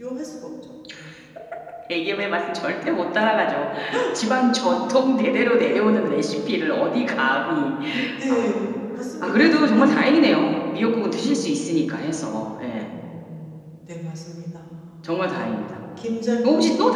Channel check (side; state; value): both; identical; correlation 1.00